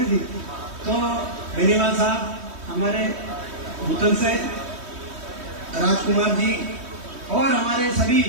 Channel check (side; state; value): left; late; 3.1 ms